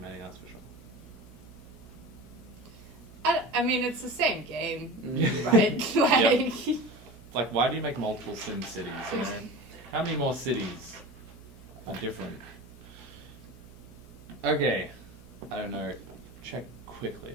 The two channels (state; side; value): noise; right; hum, 20 dB below the sound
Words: that's for sure. I mean, it's the same game, Mm. right? Like, It's like, why do you make multiple Sim cities? You know? How many more cities are different? Okay, I don't know. Check quickly